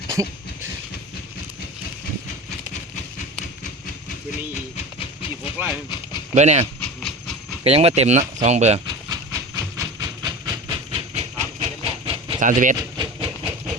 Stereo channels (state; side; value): normal; both; correlation 0.31